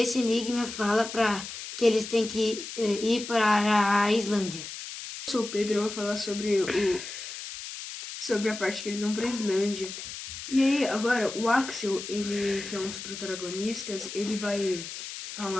enigma fala para que eles têm que ir para a Islândia. Eu sou o Pedro, eu vou falar sobre a parte que eles vão pra Islândia. E aí, agora, o Axel, ele, que é um dos protagonistas, ele vai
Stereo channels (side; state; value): left; noise; hiss, 9 dB below the sound